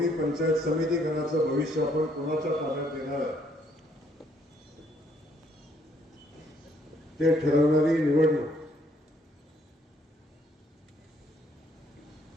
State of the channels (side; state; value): both; normal; correlation 0.67